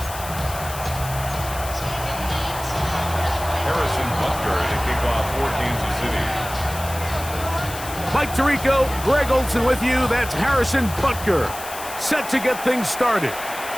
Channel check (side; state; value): left; noise; hiss, 11 dB below the sound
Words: Mike Tirico, Greg Olson with you. That's Harrison Butker, set to get things started.